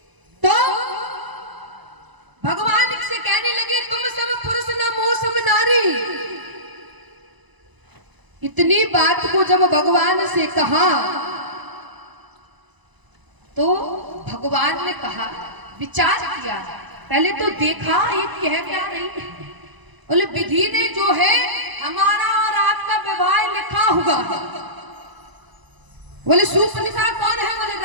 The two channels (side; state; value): left; late; 1.0 ms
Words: तो भगवान से कहने लगे तुम सब पुरुष नमो सम नारी। इतनी बात को जब भगवान से कहा तो भगवान ने कहा, विचार किया, पहले तो देखा ये कह क्या रही है। बोले विधि ने जो है हमारा और आपका विवाह लिखा हुआ है। बोले शूर्पणखा कौन है? बोले